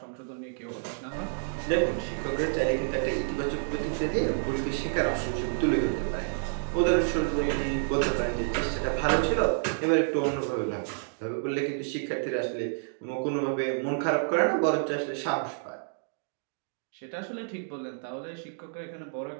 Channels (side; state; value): left; silent; digital silence